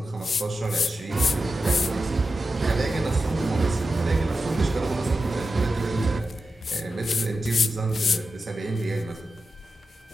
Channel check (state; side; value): normal; both; correlation 0.90